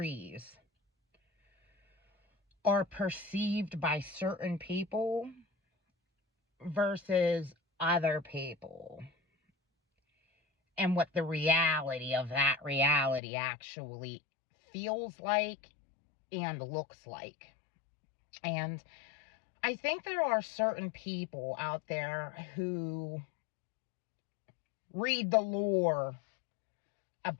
are perceived by certain people versus other people, and what the reality of that reality actually feels like and looks like. And I think there are certain people out there who read the lore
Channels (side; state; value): right; drops out; at 13.2 s